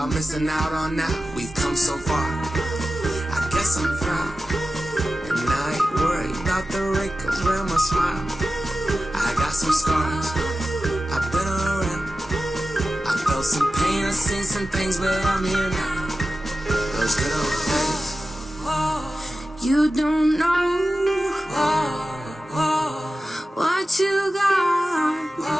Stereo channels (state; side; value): normal; both; correlation 0.94